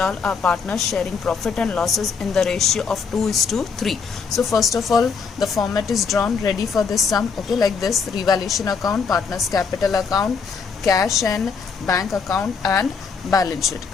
are partners sharing profit and losses in the ratio of 2:3. So first of all, the format is drawn ready for this sum. Okay, like this: revaluation account, partners capital account, cash and bank account, and balance sheet.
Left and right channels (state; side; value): quieter; right; 5.5 dB